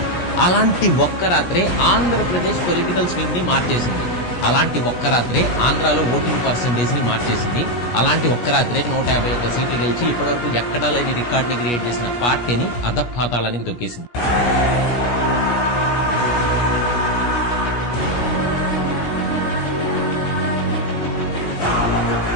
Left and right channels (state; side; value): late; right; 17 ms